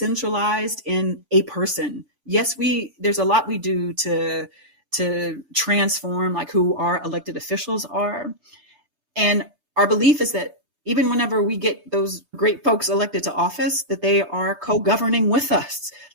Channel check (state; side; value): late; left; 6.9 ms